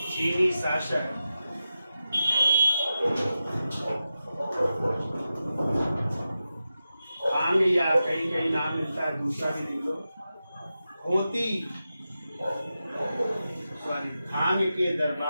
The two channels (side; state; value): both; inverted; correlation -0.91